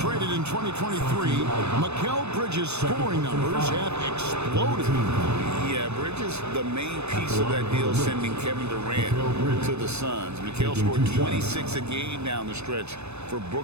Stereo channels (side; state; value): left; late; 0.81 ms